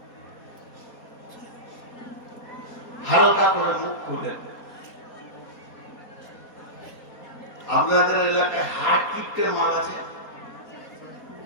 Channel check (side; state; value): right; late; 4.2 ms